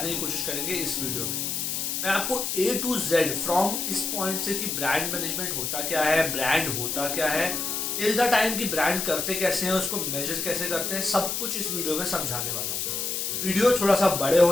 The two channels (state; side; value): noise; left; hiss, 2 dB below the sound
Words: की कोशिश करेंगे इस वीडियो में। मैं आपको A to Z फ्रॉम इस पॉइंट से कि ब्रांड मैनेजमेंट होता क्या है, ब्रांड होता क्या है, टिल द टाइम की ब्रांड करते कैसे हैं, उसको मेजर कैसे करते हैं, सब कुछ इस वीडियो में समझाने वाला हूँ। वीडियो थोड़ा सा बड़े